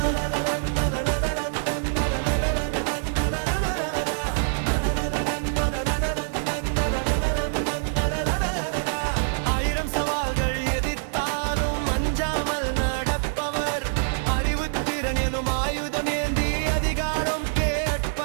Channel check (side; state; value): left; silent; digital silence